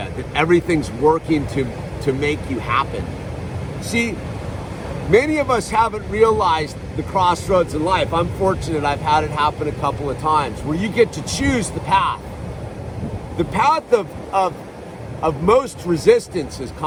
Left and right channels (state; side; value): identical; both; correlation 1.00